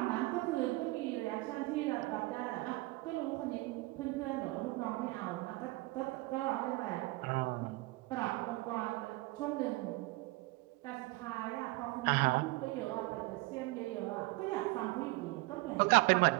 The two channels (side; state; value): left; quieter; 22.0 dB